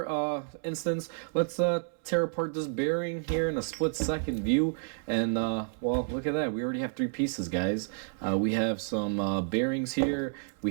instance, let's tear apart this bearing here in a split-second view, and well, look at that. We already have three pieces, guys. We have some bearings here,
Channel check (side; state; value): left; silent; 58 dB below the other